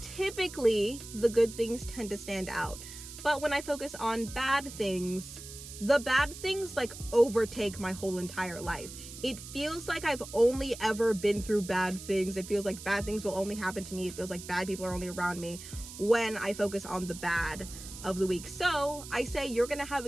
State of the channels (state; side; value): noise; right; hiss, 13 dB below the sound